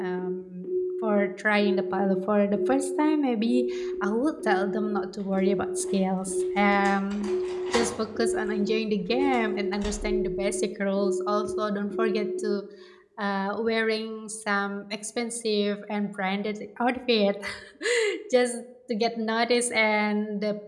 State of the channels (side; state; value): both; identical; correlation 1.00